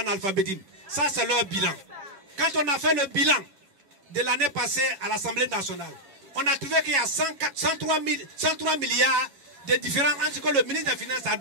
Ça, c'est leur bilan. Quand on a fait le bilan de l'année passée à l'Assemblée nationale, on a trouvé qu'il y a 103 milliards de différences entre ce que le ministre des Finances a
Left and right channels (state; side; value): late; left; 7.3 ms